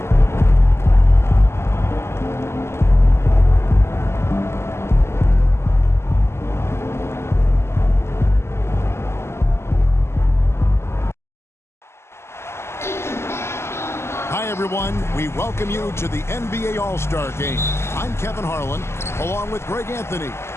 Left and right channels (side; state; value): right; late; 0.12 ms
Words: Hi, everyone. We welcome you to the NBA All-Star Game. I'm Kevin Harlan, along with Greg Anthony